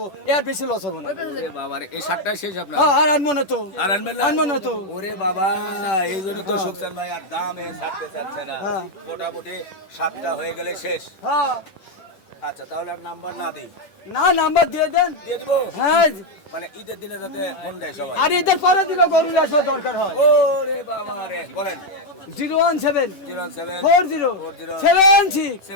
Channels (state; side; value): late; right; 10 ms